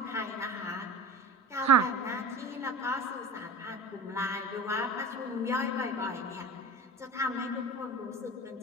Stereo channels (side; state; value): both; normal; correlation 0.33